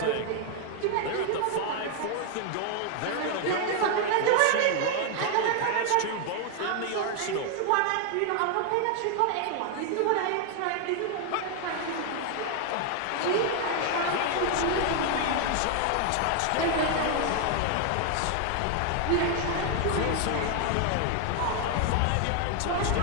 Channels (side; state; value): both; different; correlation 0.00